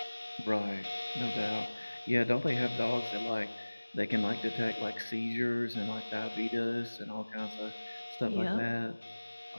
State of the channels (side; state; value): both; inverted; correlation -1.00